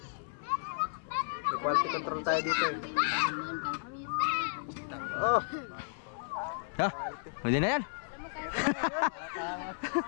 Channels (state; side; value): silent; right; 56 dB below the other